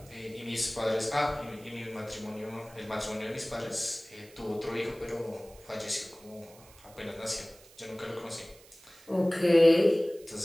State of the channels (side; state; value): right; noise; hiss, 24 dB below the sound